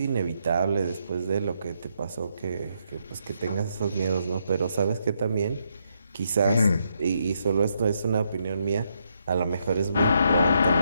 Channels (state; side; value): inverted; both; correlation -0.77